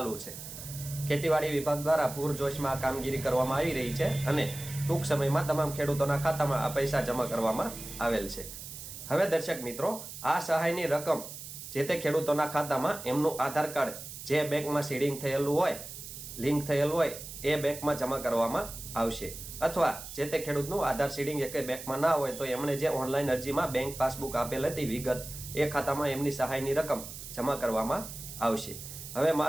છે। ખેતીવાડી વિભાગ દ્વારા પૂરજોશમાં આ કામગીરી કરવામાં આવી રહી છે અને ટૂંક સમયમાં તમામ ખેડૂતોના ખાતામાં આ પૈસા જમા કરવામાં આવેલ છે। હવે દર્શક મિત્રો, આ સહાયની રકમ જે તે ખેડૂતોના ખાતામાં એમનું આધાર કાર્ડ જે બેંકમાં સીડિંગ થયેલું હોય, લિંક થયેલું હોય એ બેંકમાં જમા કરવામાં આવશે, અથવા જે તે ખેડૂતનું આધાર સીડિંગ એક બેંકમાં ના હોય તો એમણે જે ઓનલાઈન અરજીમાં બેંક પાસબુક આપેલ હતી વિગત, એ ખાતામાં એમની સહાયની રકમ જમા કરવામાં આવશે। હવે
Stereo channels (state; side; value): noise; right; hiss, 11 dB below the sound